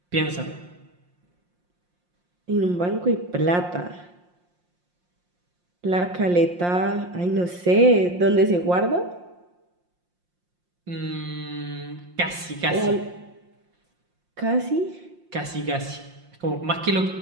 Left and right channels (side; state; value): left; late; 5.7 ms